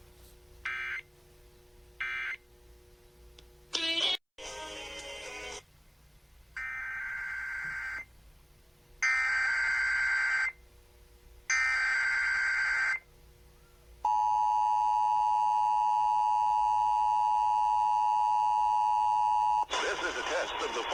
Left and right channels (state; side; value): identical; both; correlation 1.00